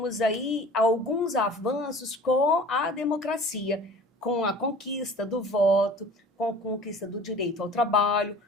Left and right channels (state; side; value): normal; both; correlation 0.44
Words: aí alguns avanços com a democracia, com a conquista do voto, com a conquista do direito ao trabalho,